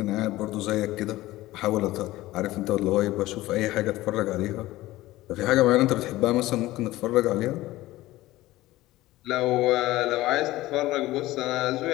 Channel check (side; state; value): right; quieter; 17.2 dB